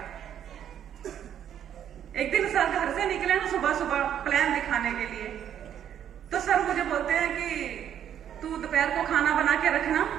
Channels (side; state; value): left; quieter; 9.8 dB